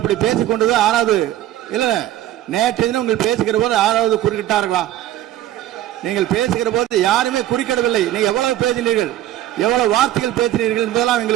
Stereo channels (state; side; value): quieter; left; 13.3 dB